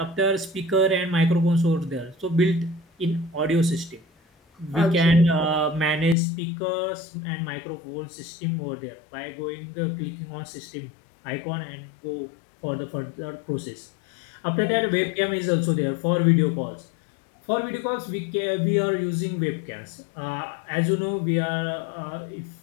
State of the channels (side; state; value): right; drops out; at 6.2 s